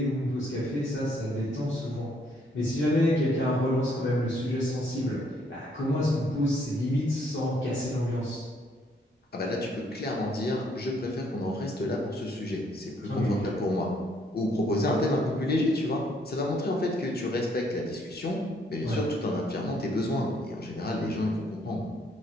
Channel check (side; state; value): both; normal; correlation 0.68